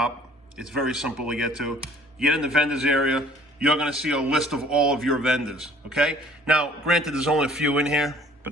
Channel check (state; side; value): normal; both; correlation 0.54